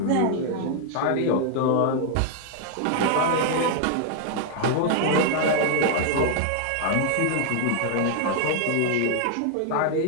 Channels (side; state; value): both; different; correlation 0.00